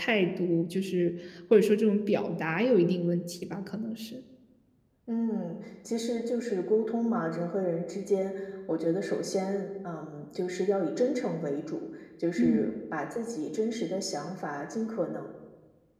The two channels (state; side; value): identical; both; correlation 1.00